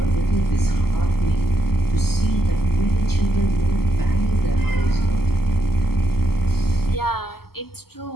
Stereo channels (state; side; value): late; right; 0.95 ms